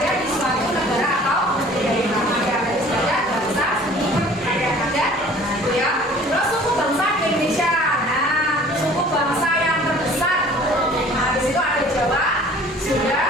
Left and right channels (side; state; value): both; normal; correlation 0.49